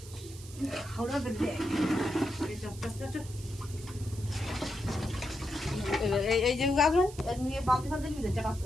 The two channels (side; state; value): right; noise; hiss, 17 dB below the sound